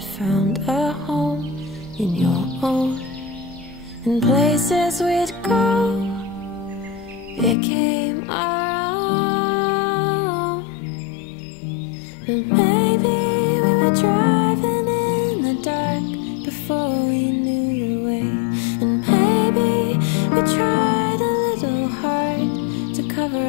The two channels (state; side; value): drops out; right; at 7.6 s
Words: found a home in your own. And places we'd go became our own. But maybe we were driving in the dark before we knew the way. And maybe we tried a little hard to cover